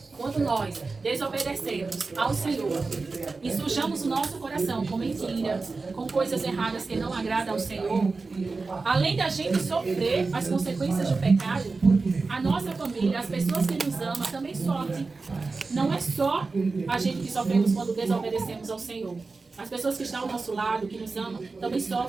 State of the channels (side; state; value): left; quieter; 4.0 dB